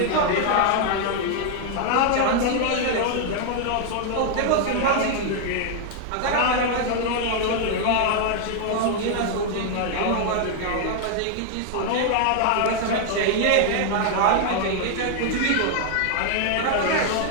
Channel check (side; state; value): both; different; correlation 0.00